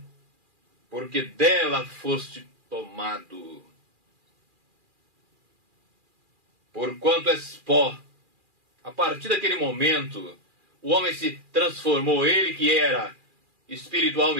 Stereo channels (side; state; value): left; late; 2.4 ms